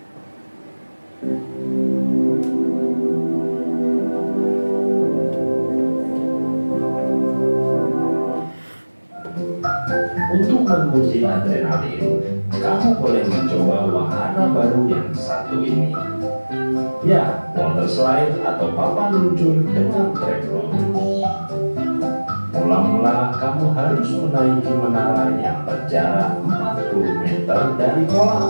Untuk menguji adrenalin, kamu boleh mencoba wahana baru yang satu ini. Ya, water slide atau papan luncur dengan trekroll. Mula-mula kamu harus menaiki menara yang berjarak 40 meter dari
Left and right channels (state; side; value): inverted; both; correlation -1.00